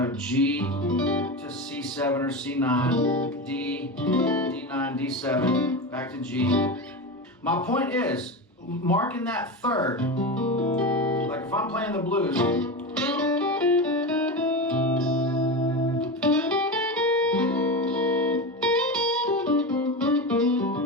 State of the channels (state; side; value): normal; both; correlation 0.21